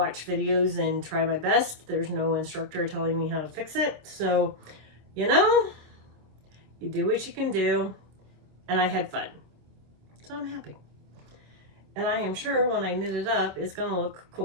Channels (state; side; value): late; left; 26 ms